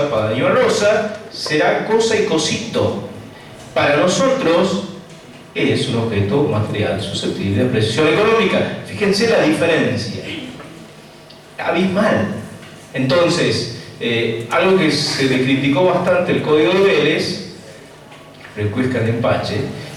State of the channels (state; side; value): identical; both; correlation 1.00